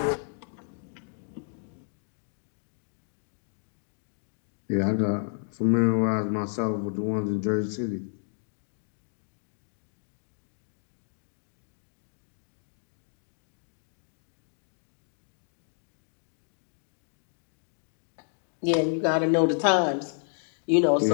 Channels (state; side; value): silent; right; 57 dB below the other